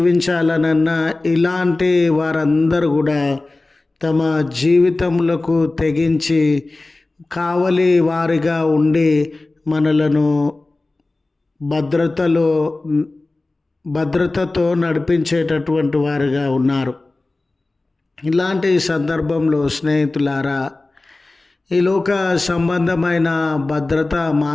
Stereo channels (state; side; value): quieter; right; 3.1 dB